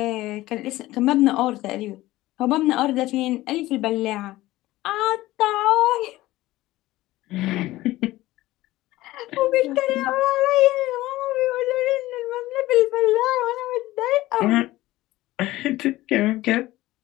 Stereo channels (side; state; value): right; quieter; 17.2 dB